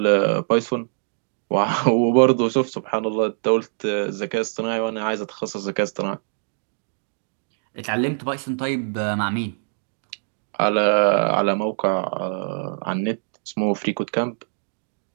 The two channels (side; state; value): left; silent; digital silence